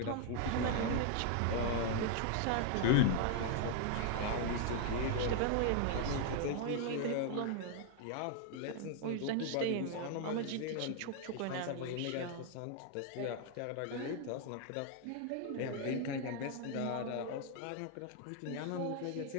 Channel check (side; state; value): both; different; correlation 0.00